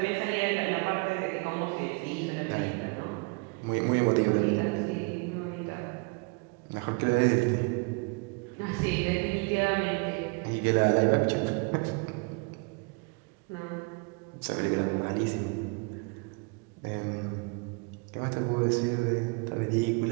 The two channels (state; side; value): quieter; left; 31.0 dB